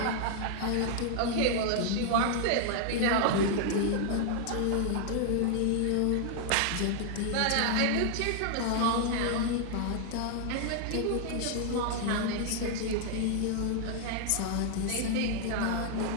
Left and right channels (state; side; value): different; both; correlation 0.00